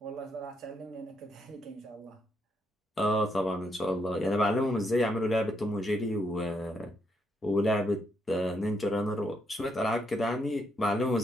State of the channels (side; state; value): both; normal; correlation 0.77